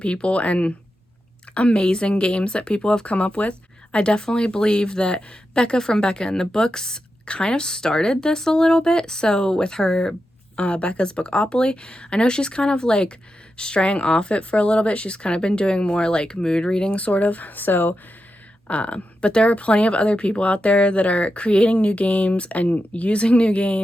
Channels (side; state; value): both; normal; correlation 0.89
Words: people and amazing games that people have come up with. I definitely believe that Becca from Becca in the Books kind of started this a little bit. So with her Becca's Bookopoly, I know she's kind of like straying off it for a little bit. She's kind of been doing more like mood reading sort of. So but there are plenty of other people out there that are creating new games and using new